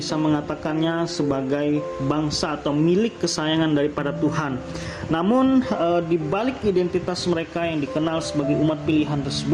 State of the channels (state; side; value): identical; both; correlation 1.00